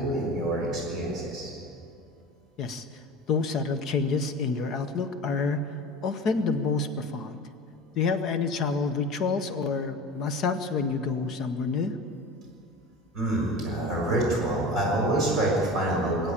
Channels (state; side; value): normal; both; correlation 0.34